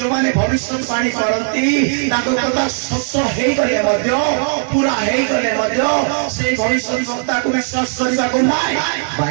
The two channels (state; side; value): silent; left; 68 dB below the other